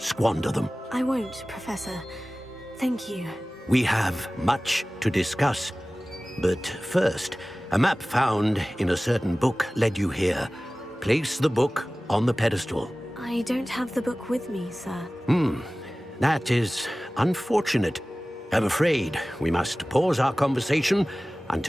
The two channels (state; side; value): normal; both; correlation 0.97